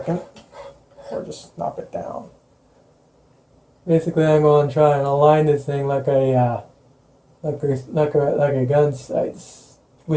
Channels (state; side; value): identical; both; correlation 1.00